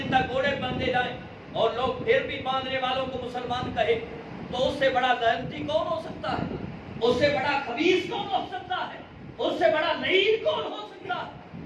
تک گھوڑے باندھے جائیں اور لوگ پھر بھی باندھنے والوں کو مسلمان کہے، تو اس سے بڑا لعنتی کون ہو سکتا ہے؟ اس سے بڑا خبیث کون ہو سکتا ہے؟ اس سے بڑا لعین کون ہو سکتا ہے؟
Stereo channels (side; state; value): both; identical; correlation 1.00